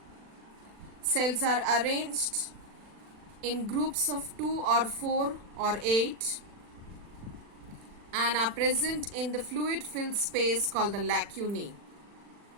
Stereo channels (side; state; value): left; late; 40 ms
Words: Cells are arranged in groups of 2 or 4 or 8 and are present in the fluid-filled space called the lacunae.